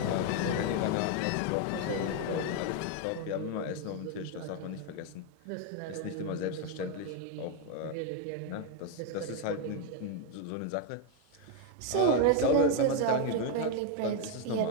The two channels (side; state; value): both; different; correlation 0.01